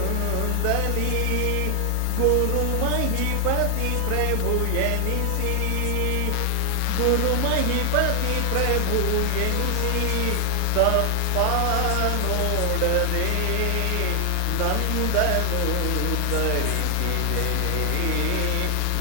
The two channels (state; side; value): different; both; correlation 0.00